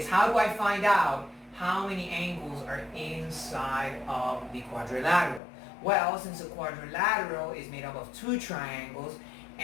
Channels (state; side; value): drops out; right; at 5.4 s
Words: how do I find out how many angles are inside of the quadrilateral? Well, since a quadrilateral is made up of 2 triangles,